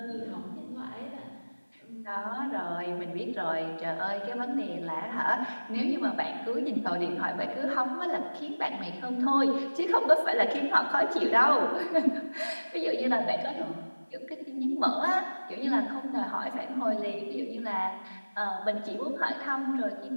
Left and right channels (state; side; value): inverted; both; correlation -1.00